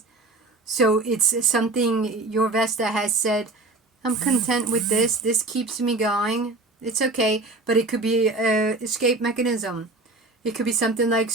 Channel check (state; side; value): quieter; left; 3.2 dB